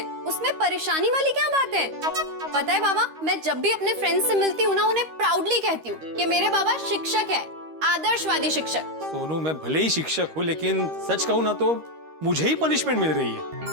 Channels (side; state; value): left; late; 13 ms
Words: उसमें परेशानी वाली क्या बात है? पता है बाबा, मैं जब भी अपने फ्रेंड्स से मिलती हूँ ना, उन्हें प्राउडली कहती हूँ कि मेरे बाबा शिक्षक है, आदर्शवादी शिक्षक। सोनू मैं भले ही शिक्षक हूँ, लेकिन सच कहूँ ना तो मुझे ही पनिशमेंट मिल रही है।